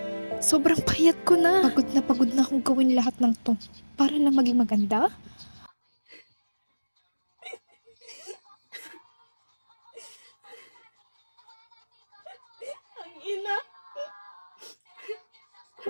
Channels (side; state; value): both; inverted; correlation -1.00